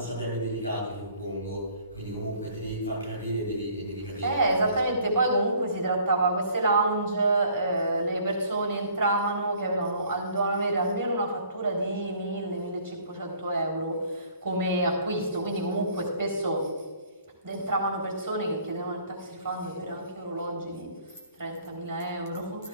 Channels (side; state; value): both; inverted; correlation -0.56